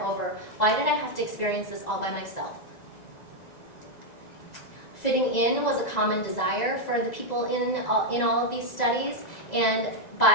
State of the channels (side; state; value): right; late; 1.9 ms